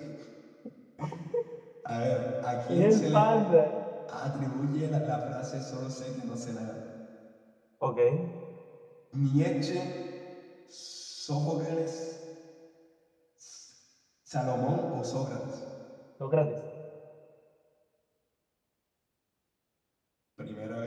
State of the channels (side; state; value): both; identical; correlation 1.00